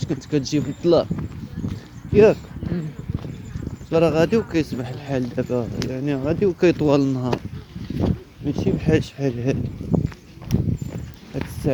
كنت كتجي في الظلام ياك. راه غادي وكيسمح الحال دابا، يعني غادي وكيطول النهار، ماشي بحال شحال هادي هاد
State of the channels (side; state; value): both; identical; correlation 1.00